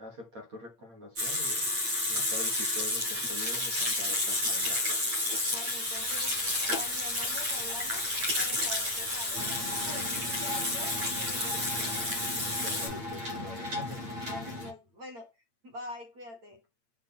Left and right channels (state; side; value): late; left; 8.7 ms